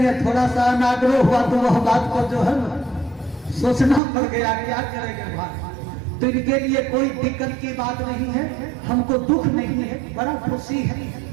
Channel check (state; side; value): drops out; left; at 4.0 s